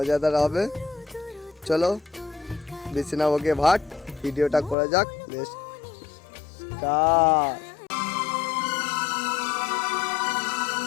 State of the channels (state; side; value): drops out; right; at 4.8 s